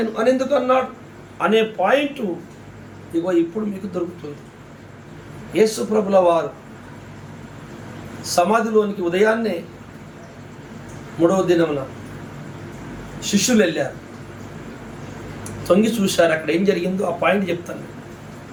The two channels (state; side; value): identical; both; correlation 1.00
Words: అని ఎందుకు అన్నాడు అనే పాయింట్ ఇగో ఇప్పుడు మీకు దొరుకుతుంది. యేసు ప్రభుల వారు సమాధిలోనికి ఉదయాన్నే 3వ దినమున శిష్యులు వెళ్ళారు, తొంగి చూశారు. అక్కడ ఏం జరిగిందో ఆ పాయింట్ చెప్తాను.